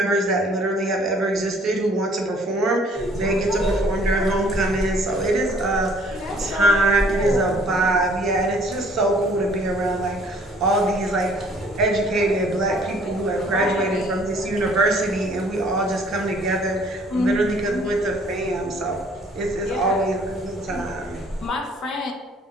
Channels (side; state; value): both; normal; correlation 0.58